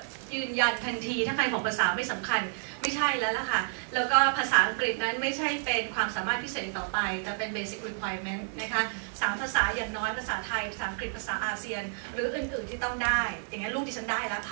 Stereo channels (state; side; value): silent; left; 58 dB below the other